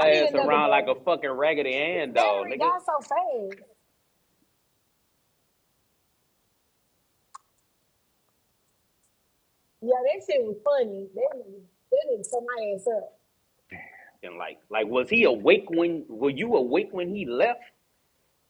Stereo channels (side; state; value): both; identical; correlation 1.00